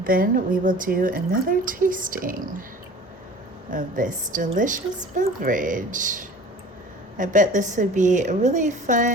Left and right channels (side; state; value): both; normal; correlation 0.43